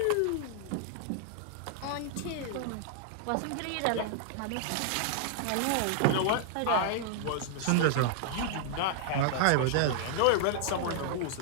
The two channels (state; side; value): different; both; correlation -0.01